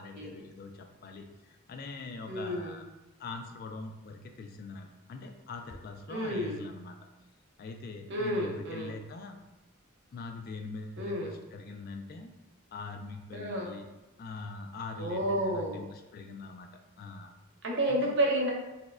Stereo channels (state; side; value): normal; both; correlation 0.03